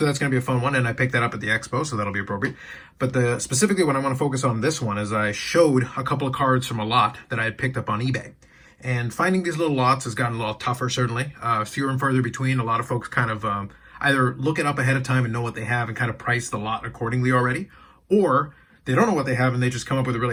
that's going to be a fun one, and I picked that up at the expo, so that'll be appropriate. But specifically what I want to focus on this one is I showed a couple of cards from a lot that I had picked up on eBay. And finding these little lots has gotten a little tougher, certainly. Fewer and further between. A lot of folks kind of either look it up ahead of time and know what they have and kind of price the lot accordingly already, or they don't know what they have and they just come up with a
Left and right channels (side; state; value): both; identical; correlation 1.00